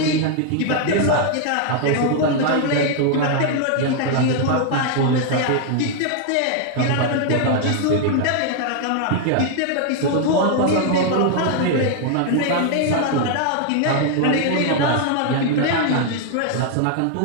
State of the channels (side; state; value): both; different; correlation 0.00